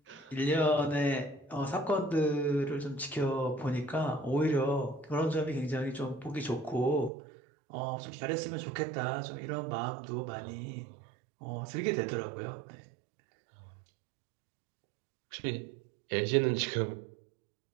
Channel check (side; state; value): left; drops out; at 7.1 s